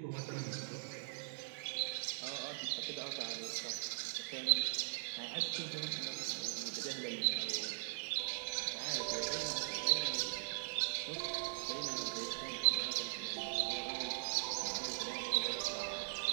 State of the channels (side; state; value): left; silent; digital silence